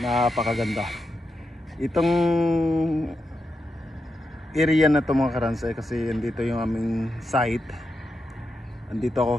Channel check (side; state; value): both; normal; correlation 0.86